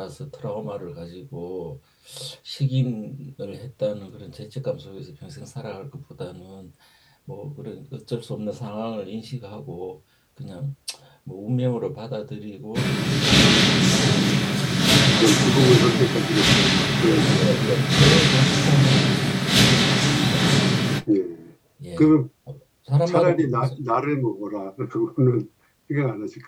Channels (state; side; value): identical; both; correlation 1.00